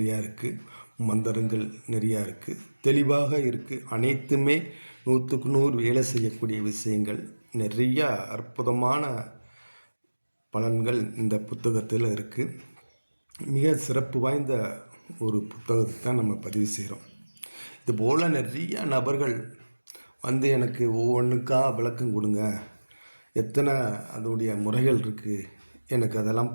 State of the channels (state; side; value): inverted; both; correlation -1.00